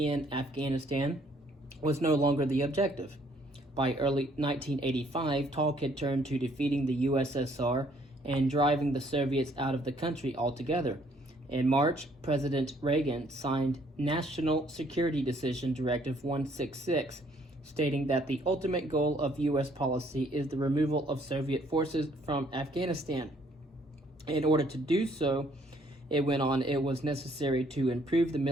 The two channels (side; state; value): both; normal; correlation 0.64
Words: Afghanistan was no longer the objective. By early 1985, talk had turned to defeating the USSR and driving the Soviets out of the country altogether. In March, President Reagan signed National Security Decision Directive 166, stating that the ultimate goal of U.S. policy is the removal of Soviet forces from Afghanistan. In order to do so, it went on, it was necessary to improve the